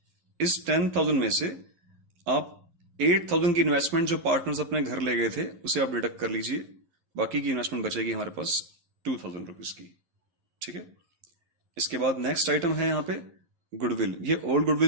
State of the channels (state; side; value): late; left; 12 ms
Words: इस 10,000 में से आप 8,000 की इन्वेस्टमेंट जो पार्टनर्स अपने घर ले गए थे उसे आप डिडक्ट कर लीजिए। बाकी की इन्वेस्टमेंट बचेगी हमारे पास 2,000 रुपीज की। ठीक है, इसके बाद नेक्स्ट आइटम है यहाँ पे गुडविल। ये ओल्ड